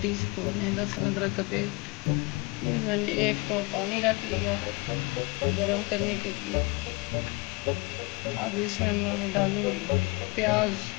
टीस्पून है लहसुन अदरक का पेस्ट। ये मैंने 1 कप पानी रख लिया गरम करने के लिए। अब इसमें मैं डालूँगी प्याज,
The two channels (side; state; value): right; quieter; 26.7 dB